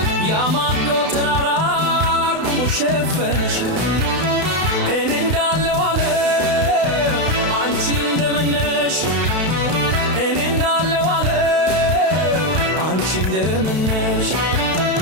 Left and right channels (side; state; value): left; late; 32 ms